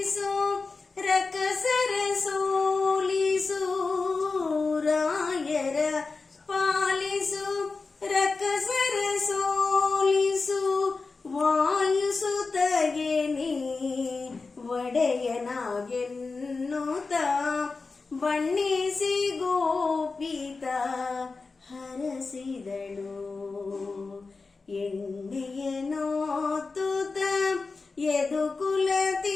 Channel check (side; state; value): right; quieter; 4.1 dB